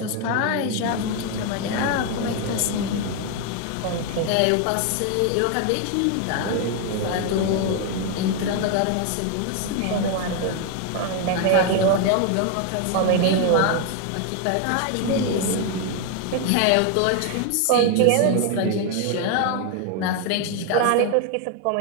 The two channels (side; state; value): both; different; correlation 0.01